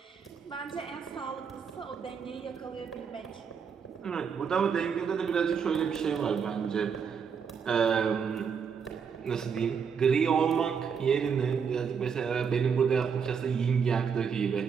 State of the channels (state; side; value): quieter; left; 6.6 dB